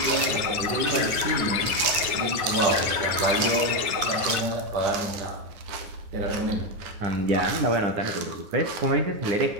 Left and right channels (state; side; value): late; left; 10 ms